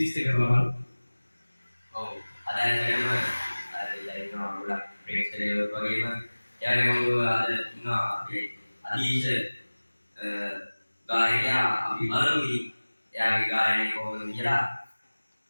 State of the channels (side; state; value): both; inverted; correlation -1.00